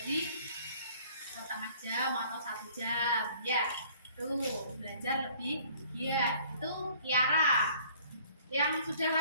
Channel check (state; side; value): inverted; both; correlation -0.55